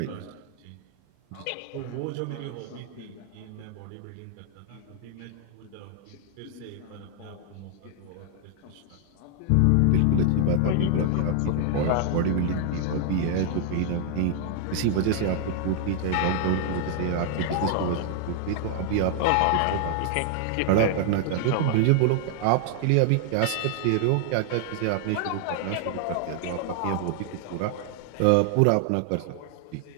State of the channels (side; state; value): both; different; correlation 0.00